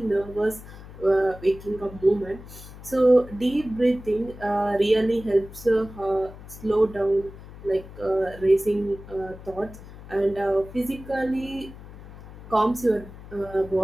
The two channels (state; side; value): noise; left; hum, 16 dB below the sound